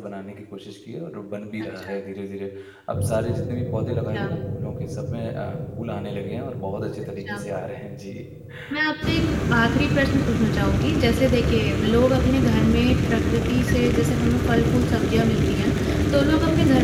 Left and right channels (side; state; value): both; identical; correlation 1.00